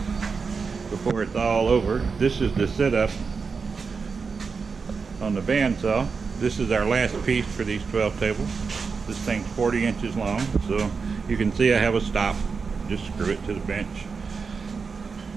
before it's all over, this is the setup on the bandsaw. This is our last piece for these 12 tables. This thing's 40 inches long, so you can see I have a stop. Just screw it to the bench.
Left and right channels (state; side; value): quieter; left; 5.1 dB